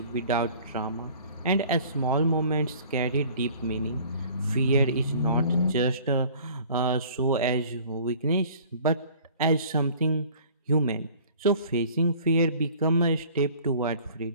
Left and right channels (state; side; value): inverted; both; correlation -0.50